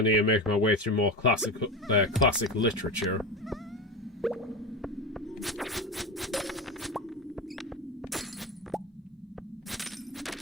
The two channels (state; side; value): normal; both; correlation 0.22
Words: to make my way through more classic literature?